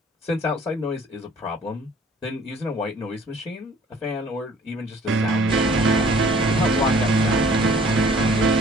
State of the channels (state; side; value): normal; both; correlation 0.55